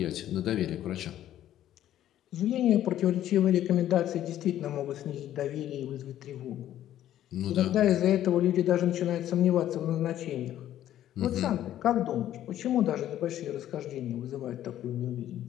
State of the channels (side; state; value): right; quieter; 12.2 dB